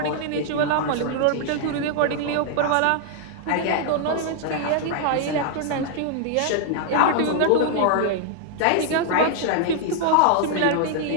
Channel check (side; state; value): both; different; correlation 0.00